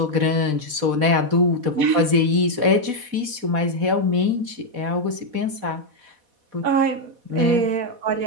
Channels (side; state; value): left; late; 4.1 ms